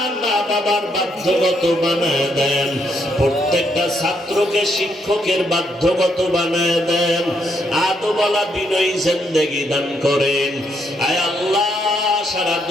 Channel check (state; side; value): normal; both; correlation 0.75